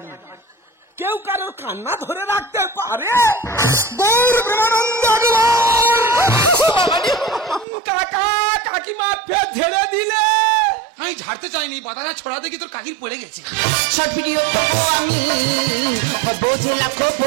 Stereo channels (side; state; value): left; drops out; at 7.7 s